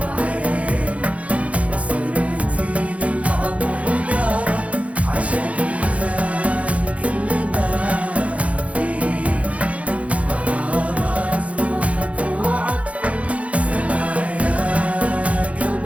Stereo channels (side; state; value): left; late; 0.065 ms